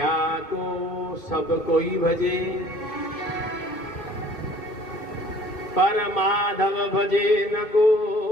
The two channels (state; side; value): late; right; 2.5 ms